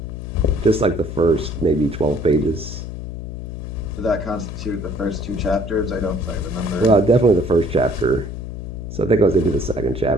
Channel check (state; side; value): noise; left; hum, 8 dB below the sound